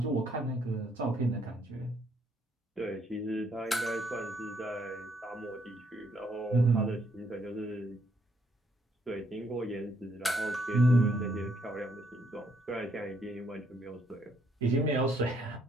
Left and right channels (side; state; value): both; normal; correlation 0.70